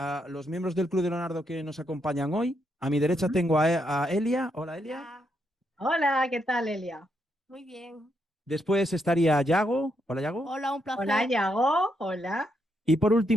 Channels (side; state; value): both; normal; correlation 0.79